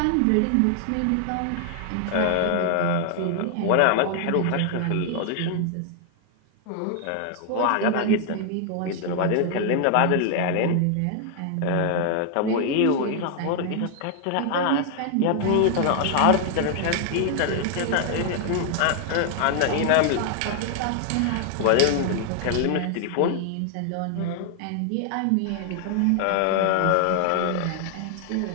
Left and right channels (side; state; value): both; different; correlation 0.00